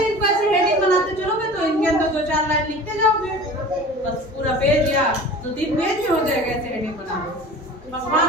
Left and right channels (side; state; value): both; normal; correlation 0.39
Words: इनको ऐसे हेडिंग बनाते चलोगे तो इनके अंदर 2-4 लाइन लिखते जाओगे, बस पूरा पेज या 2-3 पेज में हो जाएगा ऐसे हेडिंग बना।